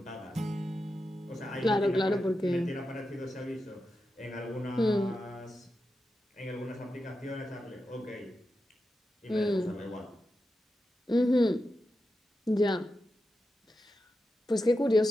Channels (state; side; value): normal; both; correlation 0.89